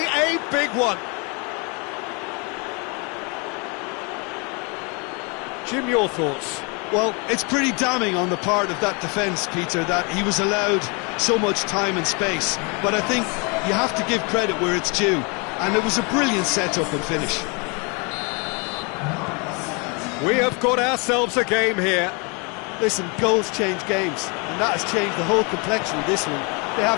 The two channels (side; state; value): right; quieter; 32.1 dB